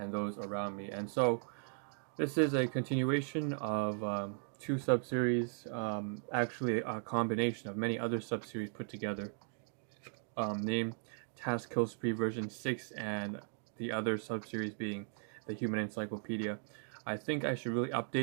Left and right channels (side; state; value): left; silent; 53 dB below the other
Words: those around me. And so, this is a continuation of two sub-series, actually a combination of many other sub-series put together, named Task Kill Spree version 6 and the other sub-series being the Human Encyclopedia. I think I should really